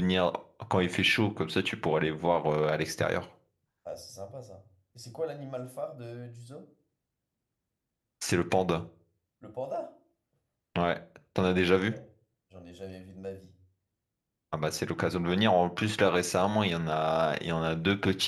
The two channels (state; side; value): identical; both; correlation 1.00